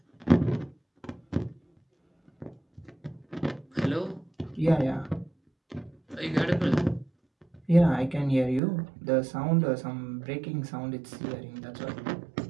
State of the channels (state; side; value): drops out; left; at 8.6 s